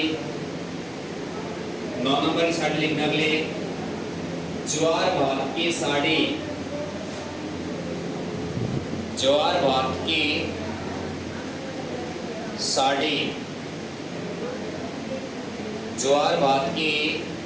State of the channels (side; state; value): left; noise; rumble, 28 dB below the sound